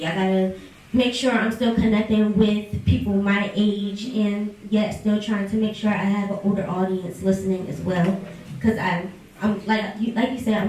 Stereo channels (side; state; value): both; identical; correlation 1.00